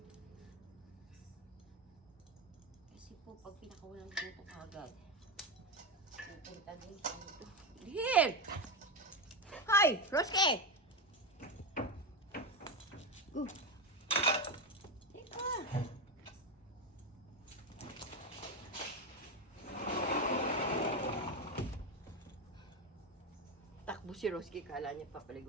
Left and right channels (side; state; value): both; normal; correlation 0.15